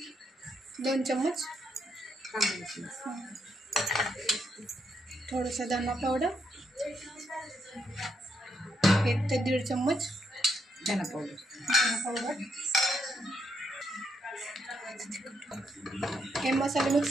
2 चम्मच, थोडासा धना पावडर, 1 ते 1.5 चम्मच धना पावडर। हे मसाले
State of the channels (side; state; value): both; normal; correlation 0.78